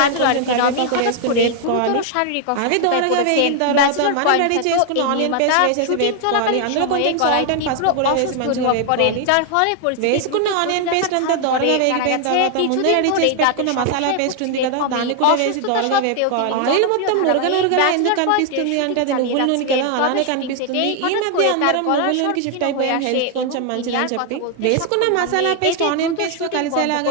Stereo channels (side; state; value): both; different; correlation 0.00